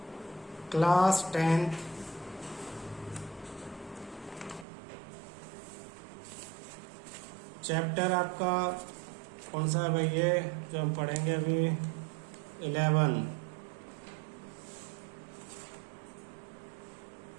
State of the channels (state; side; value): drops out; left; at 4.7 s